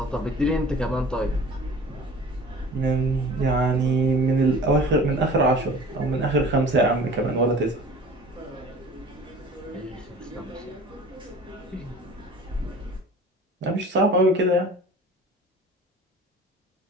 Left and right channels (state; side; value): normal; both; correlation 0.43